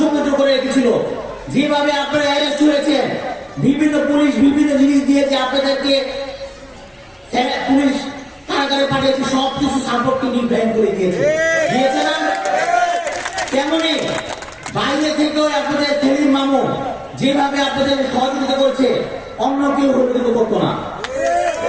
করে রেখেছিল, যেভাবে আপনারা অ্যারেস্ট হয়েছেন, বিভিন্ন পুলিশ বিভিন্ন জিনিস দিয়েছে আপনাদেরকে, পুলিশ কারাগারে পাঠিয়েছে, সবকিছু সাপোর্ট কিন্তু ইব্রাহিম করে দিয়েছে না? তেমনি বাইরে থেকেও আপনাদের সেলিম মামু যেভাবে আপনাদের সহযোগিতা করছে, অন্য কেউ সহযোগিতা করতো না।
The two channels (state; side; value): identical; both; correlation 1.00